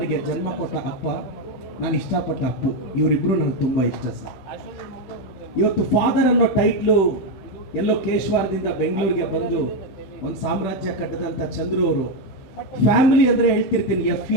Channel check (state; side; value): late; right; 16 ms